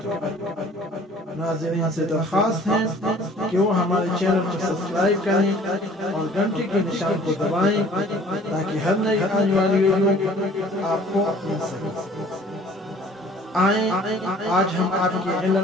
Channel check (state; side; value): normal; both; correlation 0.52